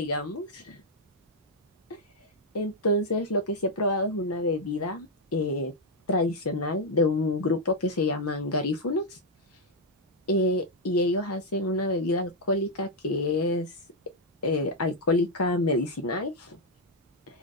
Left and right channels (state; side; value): normal; both; correlation -0.01